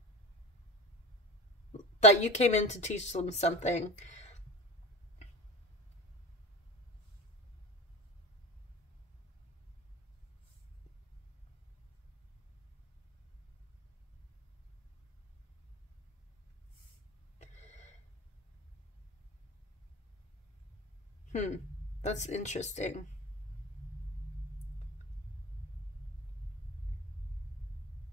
That you came in to teach them something. That's interesting.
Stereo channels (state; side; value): normal; both; correlation 0.32